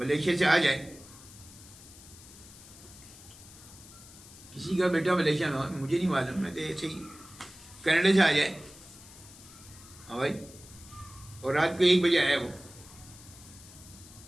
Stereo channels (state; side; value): noise; left; hiss, 19 dB below the sound